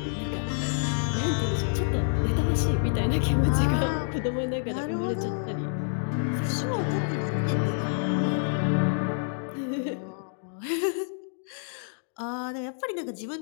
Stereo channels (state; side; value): silent; right; digital silence